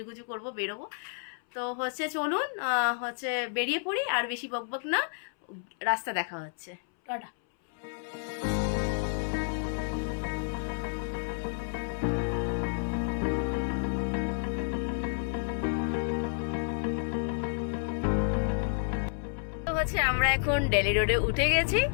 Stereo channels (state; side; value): silent; right; 57 dB below the other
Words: করবো বেরোবো। তো হচ্ছে চলুন হচ্ছে বেরিয়ে পড়ি, আর বেশি বকবক না, রাস্তা দেখা হচ্ছে, টাটা। তো হচ্ছে আমরা এখন ডেলি রোডে উঠে গেছি,